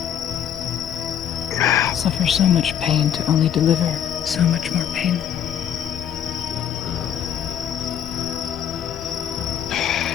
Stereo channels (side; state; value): right; quieter; 9.5 dB